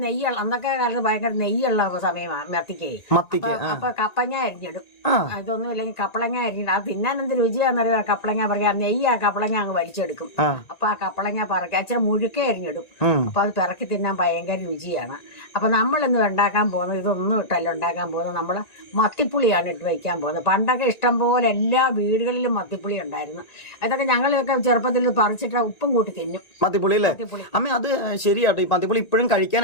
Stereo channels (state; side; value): late; right; 1.9 ms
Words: നെയ്യുള്ള, അന്നൊക്കെ കാലത്ത് ഭയങ്കര നെയ്യുള്ള സമയമാണ് മത്തിക്ക്. അപ്പൊ കപ്പങ്ങ അരിഞ്ഞിടും. ഇതൊന്നും ഇല്ലെങ്കിൽ കപ്പളങ്ങ അരിഞ്ഞിടും. അത് തിന്നാൻ എന്ത് രുചിയാന്നറിയാം. കപ്പളങ്ങ പറയാ നെയ്യ് ആ കപ്പളങ്ങ അങ്ങ് വലിച്ചെടുക്കും. അപ്പൊ ആ കപ്പളങ്ങ പറക്കി അച്ഛൻ മുഴുക്കെ അരിഞ്ഞിടും. അപ്പൊ അത് പിറക്കി തിന്നാൻ ഭയങ്കര രുചിയാണ്. അപ്പൊ നമ്മളിന്ന് ഉണ്ടാക്കാൻ പോകുന്നത് ഇതൊന്നും ഇട്ടല്ല ഉണ്ടാക്കാൻ പോകുന്നത്. നമ്മള് മത്തിപ്പുളിയാണ് ഇട്ട് വയ്ക്കാൻ പോകുന്നത്. പണ്ടൊക്കെ ഇഷ്ടം പോലെ എല്ലാ വീടുകളിലും മത്തിപ്പുളി ഉണ്ടായിരുന്നു. അതൊക്കെ ഞങ്ങളൊക്കെ ചെറുപ്പത്തിൽ പറിച്ചിട്ട് ഉപ്പും കൂട്ടി തിന്നും. മത്തിപ്പുളി അല്ലേ അമ്മ? അത് ശരിയാട്ടോ. ഈ മത്തിപ്പുളി ഇപ്പോഴും